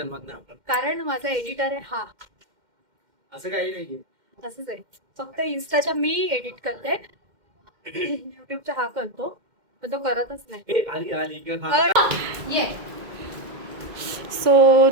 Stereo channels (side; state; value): left; late; 2.1 ms